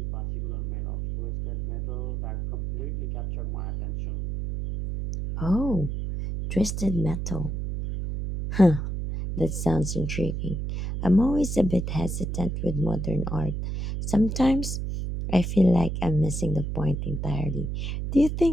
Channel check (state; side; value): noise; right; hum, 3 dB below the sound